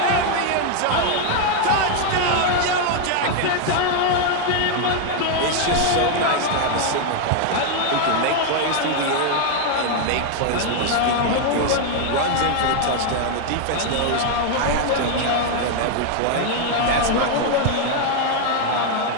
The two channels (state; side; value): different; both; correlation 0.01